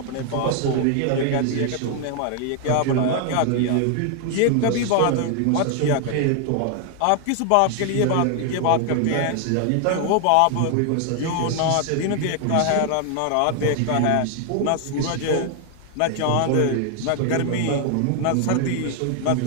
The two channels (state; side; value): different; both; correlation 0.00